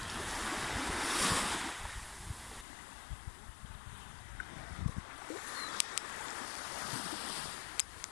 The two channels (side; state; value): right; drops out; at 2.7 s